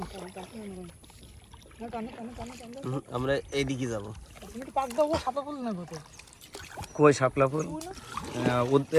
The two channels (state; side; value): identical; both; correlation 1.00